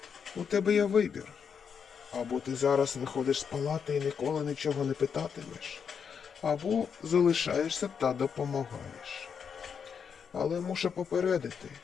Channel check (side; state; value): right; quieter; 6.8 dB